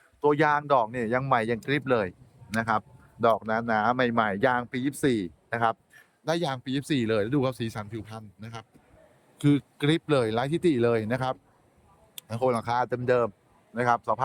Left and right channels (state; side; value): identical; both; correlation 1.00